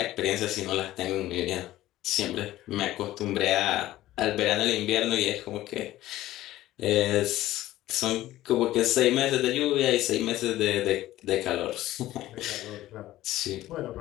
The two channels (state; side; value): quieter; right; 15.2 dB